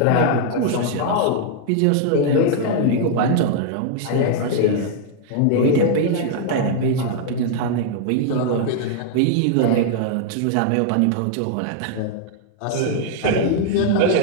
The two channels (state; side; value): different; both; correlation 0.00